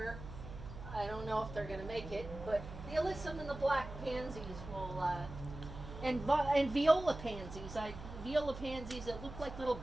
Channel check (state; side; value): noise; right; hum, 11 dB below the sound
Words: I don't know if they're going to make it, but the alyssum and the black pansies will, and viola pansies. Viola pansies that look like little